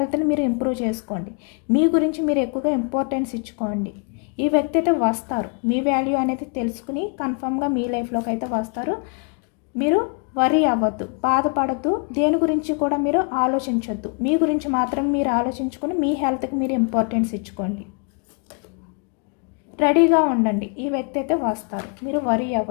మీరు ఇంప్రూవ్ చేసుకోండి, మీ గురించి మీరు ఎక్కువగా ఇంపార్టెన్స్ ఇచ్చుకోండి. ఈ వ్యక్తి అయితే వస్తారు, మీ వాల్యూ అనేది తెలుసుకుని కన్ఫామ్గా మీ లైఫ్లోకి అయితే వస్తారు. మీరు వరీ అవ్వద్దు, బాధపడద్దు, దేని గురించి కూడా మీరు ఆలోచించొద్దు. మీ గురించి మాత్రం మీరు ఆలోచించుకొని మీ హెల్త్కి మీరు ఇంపార్టెన్స్ ఇచ్చుకోండి. రెడీగా ఉండండి, ఈ వ్యక్తి అయితే వస్తారు, మీరు వరీ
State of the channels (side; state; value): right; quieter; 38.6 dB